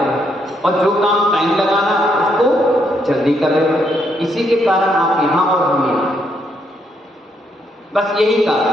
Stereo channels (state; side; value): normal; both; correlation 0.75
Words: और जो काम टाइम लगाना उसको जल्दी कर रहे हो। इसी के कारण आप यहाँ और हम यहाँ, बस यही